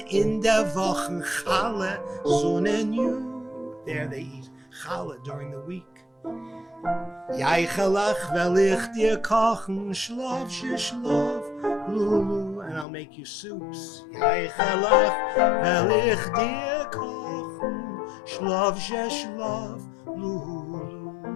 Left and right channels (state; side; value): drops out; right; at 12.9 s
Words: in der Wochen Challah, Sonnenju. There they eat Challah during the week. Jaichelach will ich dir kochen, schlaf, Lulu, and I'll make you soups. Jaichelach will ich dir kochen, schlaf, Lulu.